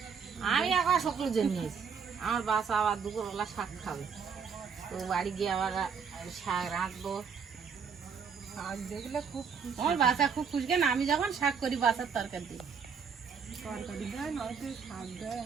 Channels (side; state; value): left; quieter; 6.3 dB